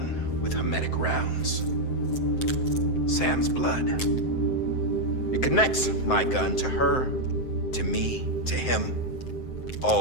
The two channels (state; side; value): late; right; 7.7 ms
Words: with hermetic rounds. Sam's blood. It connects my gun to her, to me, to him,